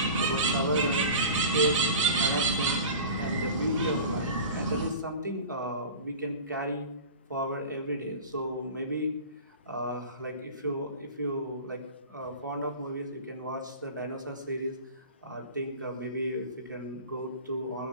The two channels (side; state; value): both; inverted; correlation -0.37